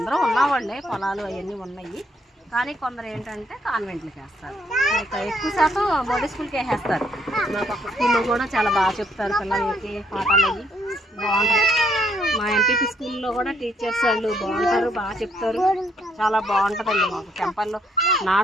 ఉన్నవాళ్ళే, పొలాలు అవన్నీ ఉన్నాయి. కానీ కొందరు ఏంటంటే కాన్వెంట్లకి వేస్తారు. ఎక్కువ శాతం మోడీ స్కూల్కి వేసేస్తారు. మా పక్క స్కూల్లో కూడా చాలా బాగా చెప్తారు పిల్లలకి, పాఠాలు అవి బాగుంటాయి. మా ఎంపీపీ స్కూల్లో కూడా టీచర్స్ వాళ్ళు బాగుంటారు, బాగా చెప్తారు, చాలా బాగుంటుందండి. మాకు టెంపల్లో నా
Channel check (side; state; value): both; normal; correlation 0.70